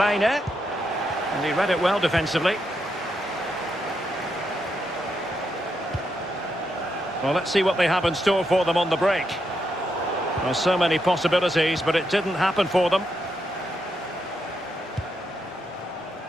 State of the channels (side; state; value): both; normal; correlation 0.82